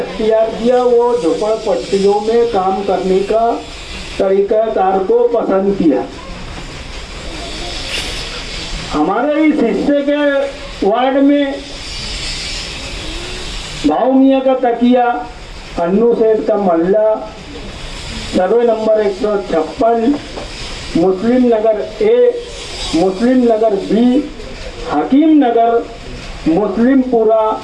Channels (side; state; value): both; identical; correlation 1.00